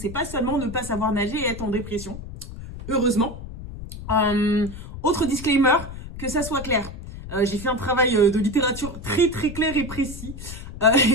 pas seulement ne pas savoir nager et être en dépression. Heureusement. Autre disclaimer, que ça soit clair. J'ai fait un travail de littérature très clair et précis.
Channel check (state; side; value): noise; left; rumble, 11 dB below the sound